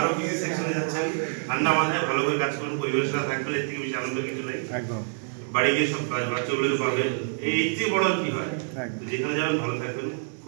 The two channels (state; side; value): silent; left; digital silence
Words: কিছু সেকশনে যাচ্ছেন, ঠান্ডা মাথায় ভালো করে কাজ করুন, পরিবারের সাথে থাকবেন, এর থেকে বেশি আনন্দ কিছু নেই। একদম বাড়ি গিয়ে সব বাচ্চাগুলোকে পাবে, এই চেয়ে বড় কি হয়, যেখানে যাবেন ভালো থাকবেন,